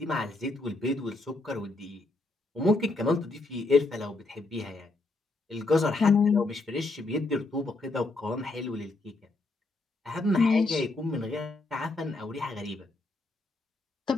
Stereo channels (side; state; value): right; quieter; 3.1 dB